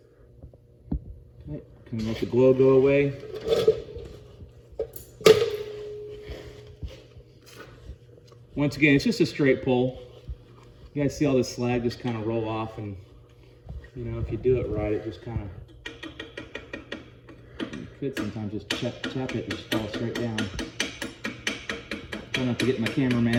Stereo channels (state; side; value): identical; both; correlation 1.00